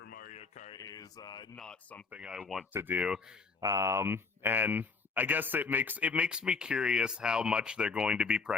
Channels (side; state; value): right; quieter; 4.6 dB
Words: Mario Kart is not something I want to do, and I guess it makes me curious how much they're going to be